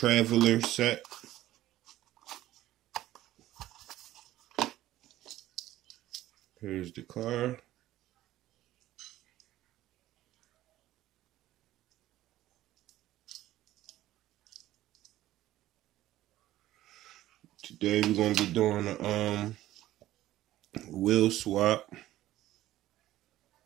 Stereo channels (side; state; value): left; quieter; 14.7 dB